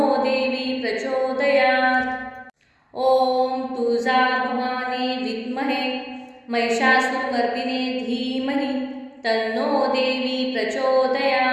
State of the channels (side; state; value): both; identical; correlation 1.00